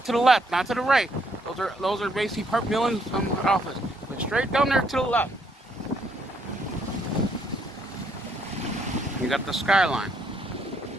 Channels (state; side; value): normal; both; correlation 0.71